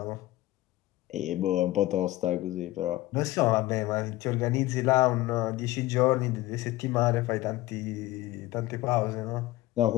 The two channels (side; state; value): right; quieter; 17.5 dB